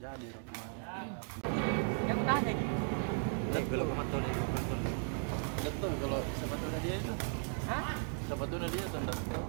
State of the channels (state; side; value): silent; left; 54 dB below the other